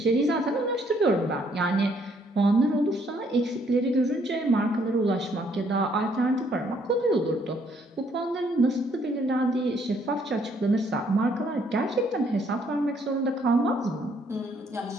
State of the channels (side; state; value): both; normal; correlation 0.67